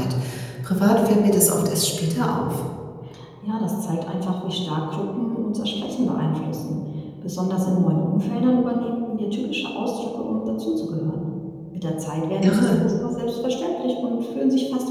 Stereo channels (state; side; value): identical; both; correlation 1.00